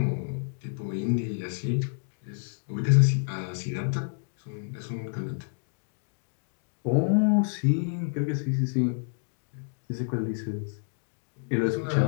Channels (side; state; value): right; silent; digital silence